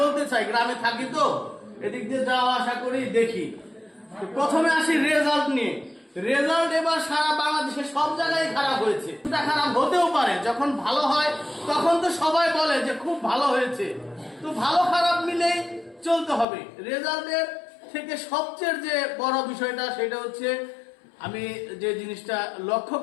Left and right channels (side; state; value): right; drops out; at 16.4 s